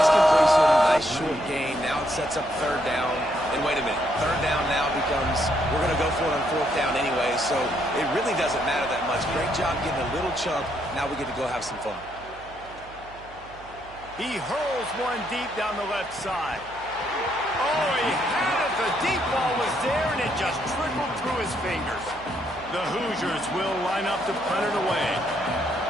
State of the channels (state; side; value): noise; right; hum, 21 dB below the sound